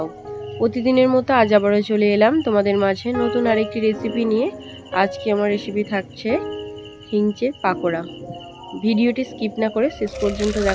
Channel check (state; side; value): identical; both; correlation 1.00